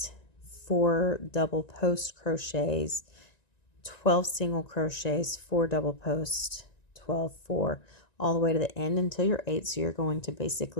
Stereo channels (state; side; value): late; right; 1.9 ms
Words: 4 double post crochets, 12 single crochets, 4 double post, 12, 4, all the way to the end until you're 8. So you're going to